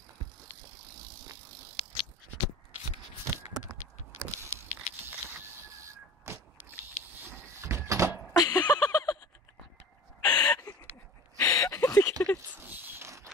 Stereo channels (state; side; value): normal; both; correlation 0.39